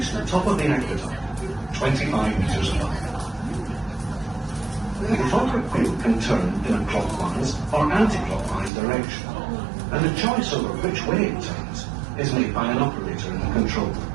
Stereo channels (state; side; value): drops out; left; at 8.7 s